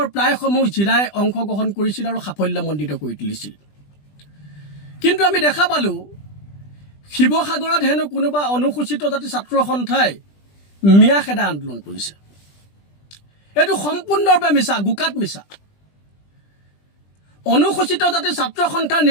প্ৰায়সমূহ জিলাই অংশগ্ৰহণ কৰিছিল আৰু সাফল্যমণ্ডিত কৰি তুলিছিল। কিন্তু আমি দেখা পালোঁ শিৱসাগৰত হেনো কোনোবা অনুসূচিত জাতি ছাত্ৰ সন্থাই মিয়া খেদা আন্দোলন কৰিছে। এইটো সম্পূৰ্ণৰূপে মিছা, গোকাত মিছা। অনুসূচিত জাতি ছাত্ৰ সন্থাৰ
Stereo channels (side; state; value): right; late; 20 ms